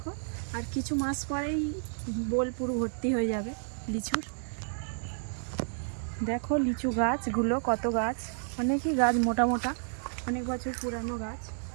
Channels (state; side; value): silent; left; digital silence